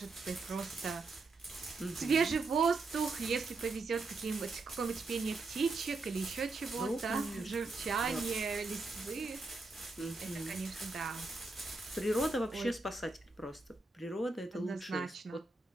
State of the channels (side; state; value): left; quieter; 3.6 dB